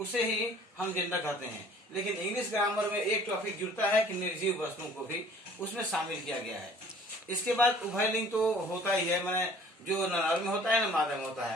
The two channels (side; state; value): both; normal; correlation 0.52